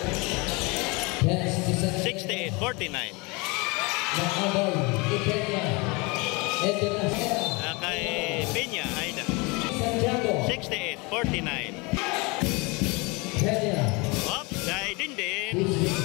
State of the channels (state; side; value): quieter; right; 27.2 dB